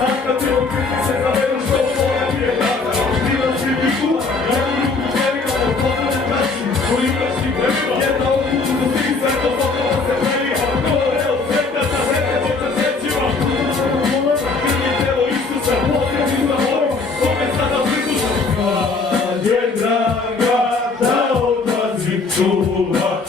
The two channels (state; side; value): quieter; right; 4.1 dB